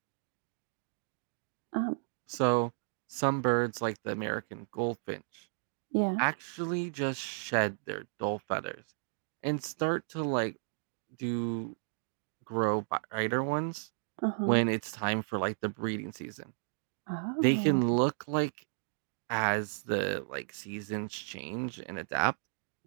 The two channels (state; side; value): silent; left; digital silence